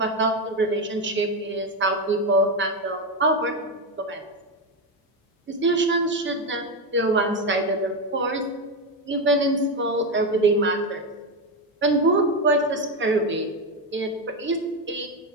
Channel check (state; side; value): normal; both; correlation 0.11